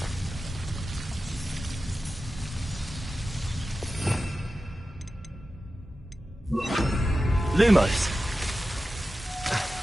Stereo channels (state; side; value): normal; both; correlation 0.93